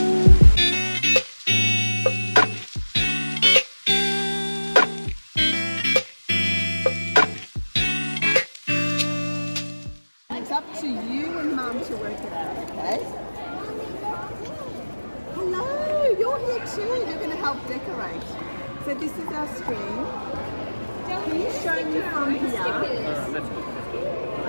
It's up to you and Mum to work it out, okay? Hello, you're here too. You're going to help decorate. So this is our screen. Can you show me from here? Here we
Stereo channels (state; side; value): inverted; both; correlation -1.00